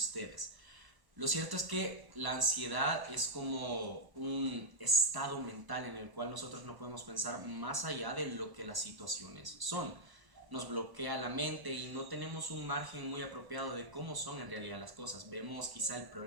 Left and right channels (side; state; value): left; late; 1.0 ms